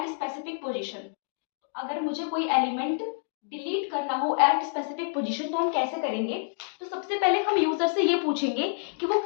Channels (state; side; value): silent; right; digital silence